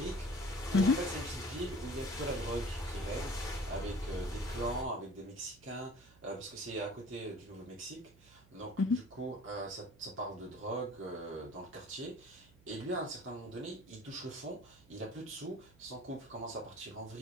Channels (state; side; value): noise; right; hum, 25 dB below the sound